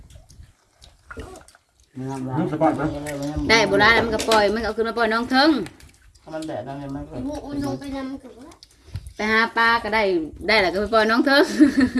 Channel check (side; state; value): both; identical; correlation 1.00